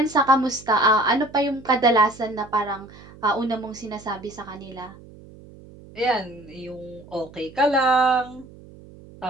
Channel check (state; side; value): noise; right; hum, 21 dB below the sound